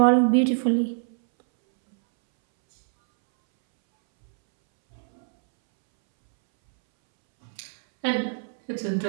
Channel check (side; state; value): left; silent; 63 dB below the other